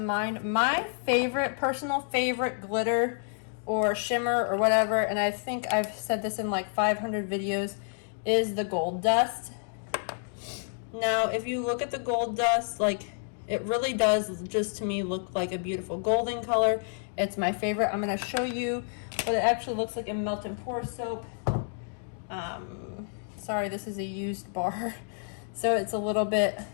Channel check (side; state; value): right; silent; digital silence